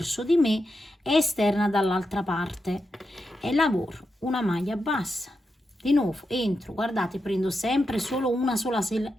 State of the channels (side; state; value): both; normal; correlation 0.87